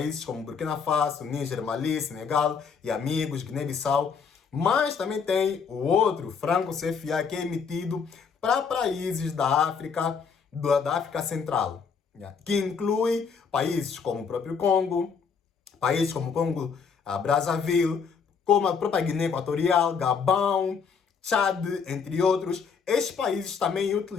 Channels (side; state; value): right; quieter; 6.0 dB